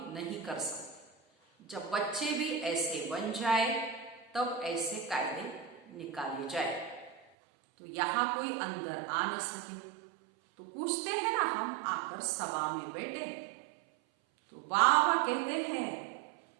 नहीं कर सकते। जब बच्चे भी ऐसे बन जाए तब ऐसे कायदे निकाले जाए। तो यहाँ कोई अंदर आ न सके। तो पूछते हैं ना, हम आकर सभा में बैठे तो बाबा कहते हैं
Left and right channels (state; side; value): drops out; left; at 7.2 s